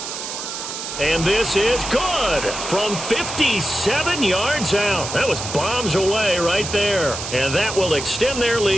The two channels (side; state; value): right; noise; hiss, 7 dB below the sound